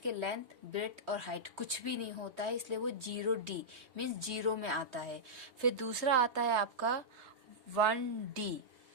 लेंथ, ब्रेड्थ और हाइट कुछ भी नहीं होता है, इसलिए वो 0D मीन्स जीरो में आता है। फिर दूसरा आता है आपका 1D,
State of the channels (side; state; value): left; late; 3.1 ms